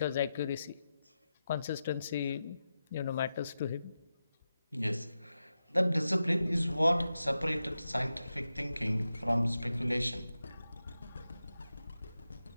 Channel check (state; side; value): inverted; both; correlation -0.91